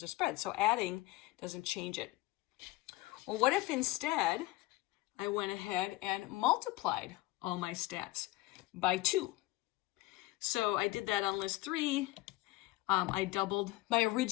of spread. So adding doesn't change it. Well, what if instead I went ahead and multiplied all my stats by 2? So I did that on list 3. I doubled my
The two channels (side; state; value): right; quieter; 19.1 dB